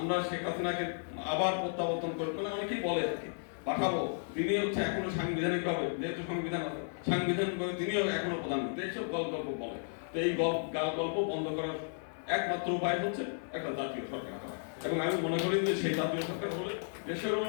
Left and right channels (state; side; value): silent; right; 55 dB below the other